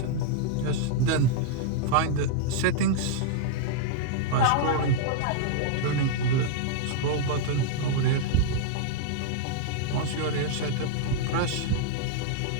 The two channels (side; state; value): both; different; correlation -0.01